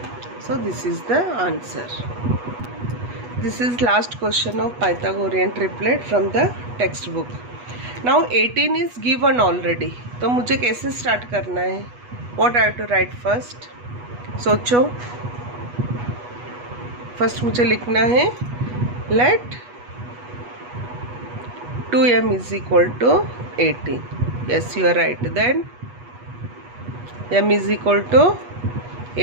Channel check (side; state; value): left; late; 8.2 ms